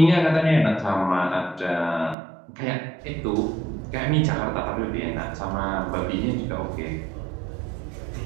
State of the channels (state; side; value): drops out; left; at 2.1 s